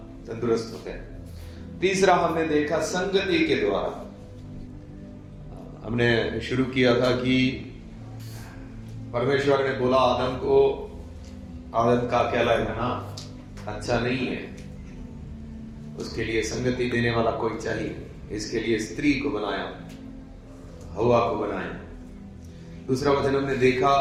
तंदुरुस्त होते हैं। तीसरा हमने देखा संगति के द्वारा। हमने शुरू किया था कि परमेश्वर ने बोला आदम को, आदम का अकेला रहना अच्छा नहीं है, उसके लिए संगति देने वाला कोई चाहिए। इसके लिए स्त्री को बनाया, हवा को बनाया। दूसरा वचन हमने देखा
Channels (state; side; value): identical; both; correlation 1.00